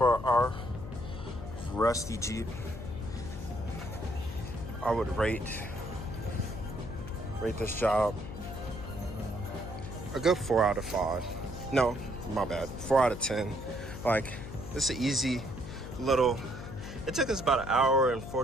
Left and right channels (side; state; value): left; noise; hum, 10 dB below the sound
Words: our rusty Jeep, I would rate this job a good 4 out of 5. No, my bad, 4 out of 10. Like, it's an easy little, it took us about an hour and